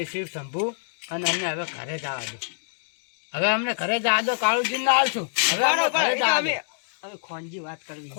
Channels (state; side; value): silent; right; digital silence